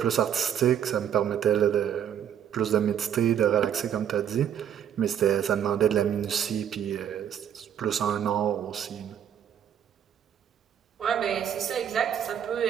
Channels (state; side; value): quieter; left; 9.4 dB